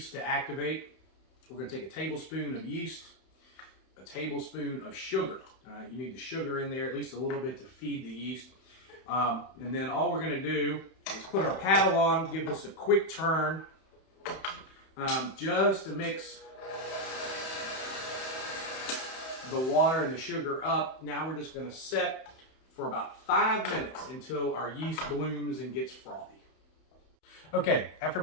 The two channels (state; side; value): late; right; 31 ms